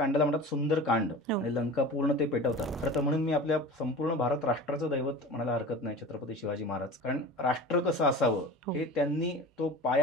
म्हणतात सुंदर कांड, आणि लंका पूर्ण ते पेटवतात. खरं तर म्हणून मी आपल्या संपूर्ण भारत राष्ट्राचं दैवत म्हणायला हरकत नाही छत्रपती शिवाजी महाराज, कारण राष्ट्र कसं असावं हे त्यांनी तो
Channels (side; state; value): both; normal; correlation 0.35